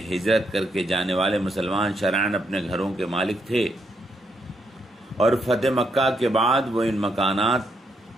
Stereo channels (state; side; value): normal; both; correlation 0.77